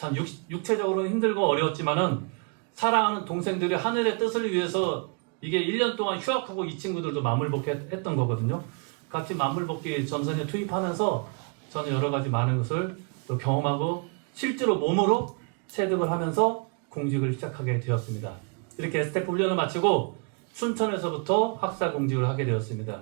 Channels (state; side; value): quieter; left; 35.2 dB